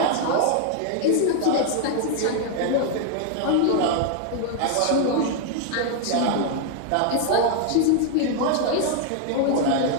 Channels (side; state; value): both; different; correlation 0.00